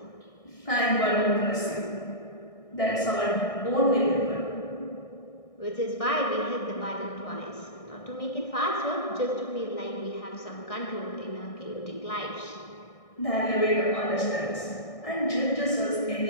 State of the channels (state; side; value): late; right; 1.6 ms